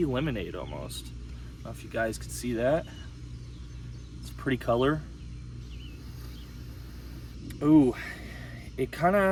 lemonade almost. I don't know if you guys can see that. It's a pretty color. Ooh, it kind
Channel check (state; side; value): identical; both; correlation 1.00